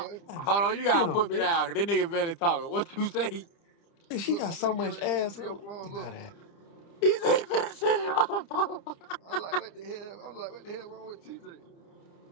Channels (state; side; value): late; right; 30 ms